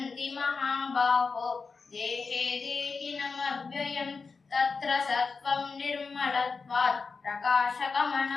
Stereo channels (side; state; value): right; quieter; 4.7 dB